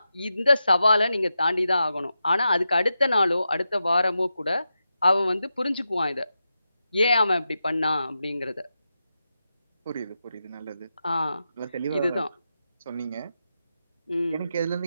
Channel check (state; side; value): inverted; both; correlation -0.89